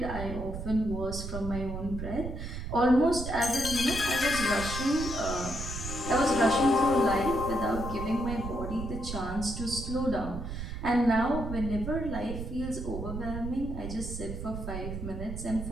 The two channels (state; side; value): noise; right; rumble, 6 dB below the sound